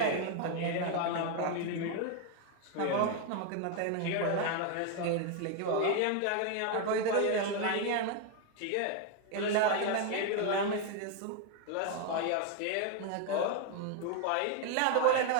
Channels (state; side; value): different; both; correlation 0.01